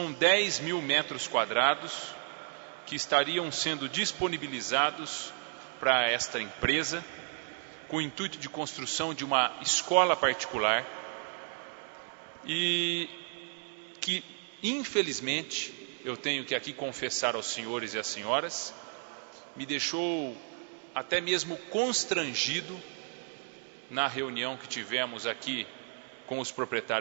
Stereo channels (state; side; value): silent; left; 56 dB below the other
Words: 10 mil metros quadrados que estariam sendo disponibilizados para esta empresa, com o intuito de construção de uma escola particular e que, infelizmente, eu tenho que aqui confessar aos senhores e às senhoras, me deixou até mesmo constrangido na reunião que tivemos aqui com os